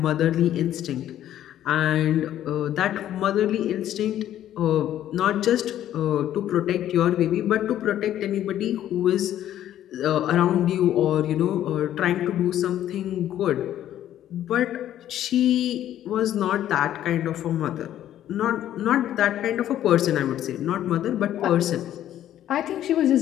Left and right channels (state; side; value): quieter; right; 11.8 dB